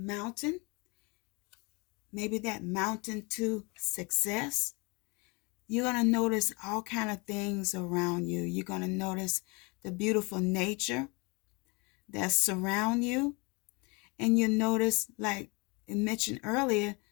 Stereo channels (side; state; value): right; quieter; 28.7 dB